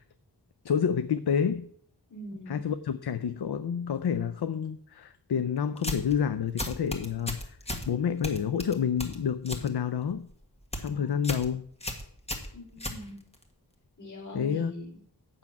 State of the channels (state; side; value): quieter; right; 6.6 dB